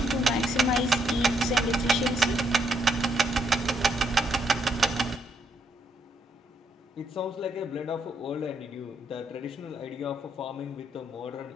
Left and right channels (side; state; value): both; normal; correlation 0.75